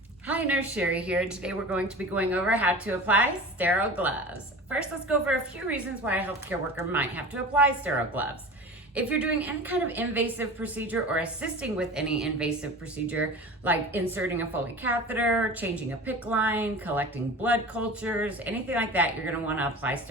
Hi, Nurse Sherry here. Today we're going to be going over how to apply sterile gloves. First, let's go over a few reasons why a healthcare worker might have to apply sterile gloves. If you're doing any kind of invasive procedure or assisting with any invasive procedure, like inserting a Foley catheter, changing a PICC line, collecting blood cultures, anything like that, you're going to want to apply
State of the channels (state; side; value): normal; both; correlation 0.35